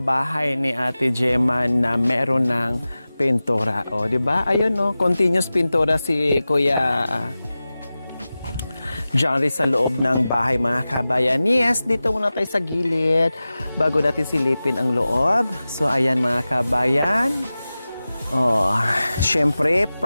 ni Ate Gemma na meron ng pintura. O, di ba? Ayun, no? Continuous pintura si Kuya Johnny sa loob ng bahay, mga kabayan. Yes, dito muna tayo sa gilid bago natin silipin ang loob. So, ayan mga kabayan. Oh, syempre,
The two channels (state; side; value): inverted; both; correlation -0.96